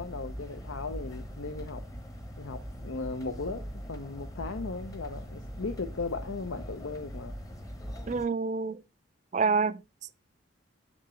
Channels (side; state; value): both; normal; correlation 0.02